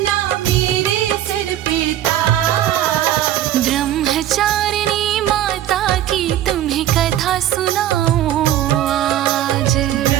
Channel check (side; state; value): left; quieter; 12.1 dB